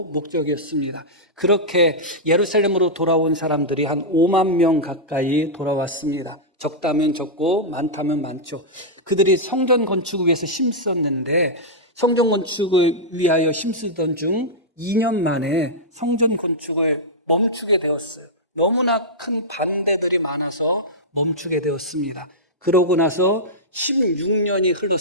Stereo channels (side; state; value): both; normal; correlation -0.10